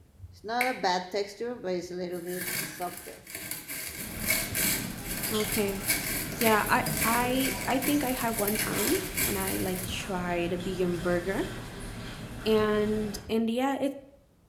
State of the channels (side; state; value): both; identical; correlation 1.00